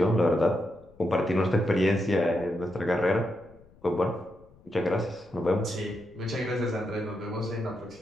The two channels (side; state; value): left; noise; rumble, 27 dB below the sound